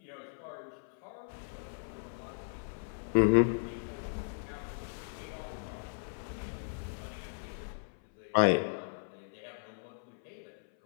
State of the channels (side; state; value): right; silent; 54 dB below the other